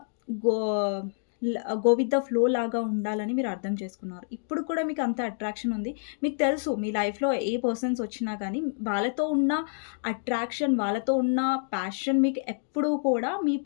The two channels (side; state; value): right; silent; digital silence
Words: go go with the flow లాగా ఉండాలని మీరు అర్థం చేసుకున్నారు. ఇప్పుడు కూడా మీకు అంత అట్రాక్షన్ ఉంది. మీకు తెలుసు మీ లైఫ్‌లో ఏ పర్సన్స్ వచ్చినా గానీ వాళ్ళతో ఉన్న అట్రాక్షన్, వాళ్ళతో ఉన్న ప్యాషన్ మీకు ఎప్పుడూ కూడా